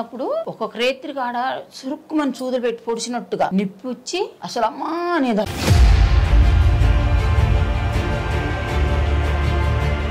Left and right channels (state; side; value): identical; both; correlation 1.00